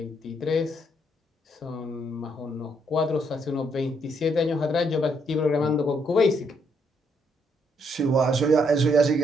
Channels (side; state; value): both; normal; correlation 0.73